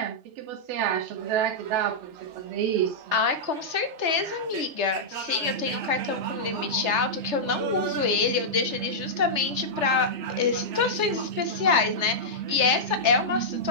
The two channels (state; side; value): late; left; 3.3 ms